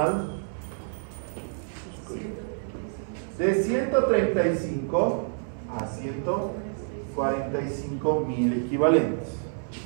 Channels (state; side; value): silent; left; 59 dB below the other